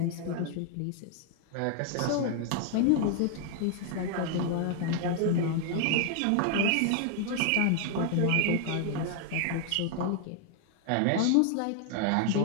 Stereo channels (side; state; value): both; different; correlation 0.00